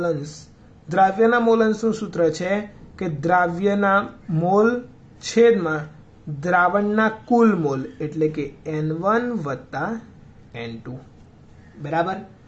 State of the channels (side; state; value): both; identical; correlation 1.00